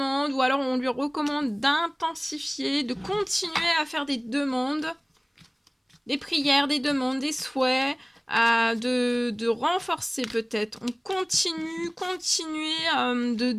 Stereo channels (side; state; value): both; identical; correlation 1.00